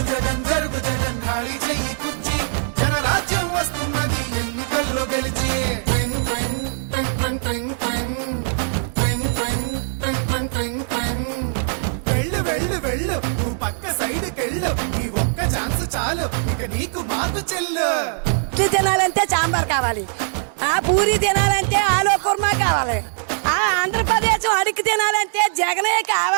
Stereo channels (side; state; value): left; silent; 65 dB below the other